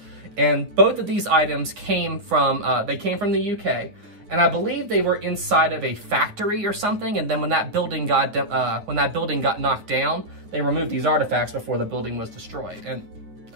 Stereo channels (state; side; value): late; left; 9.4 ms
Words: And both of these items came from, the UK, and I believe they were inside of a factory or something, and then when that building got knocked down, they removed these artifacts before the building was destroyed. And